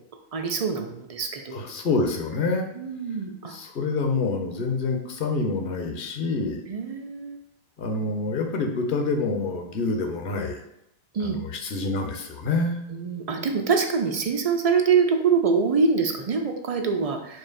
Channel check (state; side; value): late; left; 1.7 ms